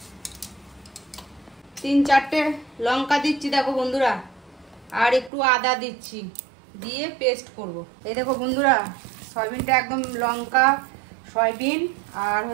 3-4টে লঙ্কা দিচ্ছি দেখো বন্ধুরা, আর একটু আদা দিচ্ছি, দিয়ে পেস্ট করব। এই দেখো বন্ধুরা, সয়াবিনটা একদম লঙ্কা, সয়াবিন আর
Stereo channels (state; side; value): drops out; left; at 5.3 s